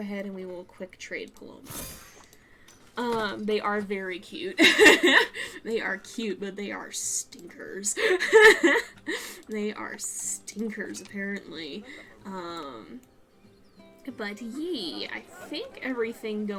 and we will quick trade Paloma. They are very cute. They are cute, but they are stinkers. They are stinkers, apparently. But yee, I think everything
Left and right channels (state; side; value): identical; both; correlation 1.00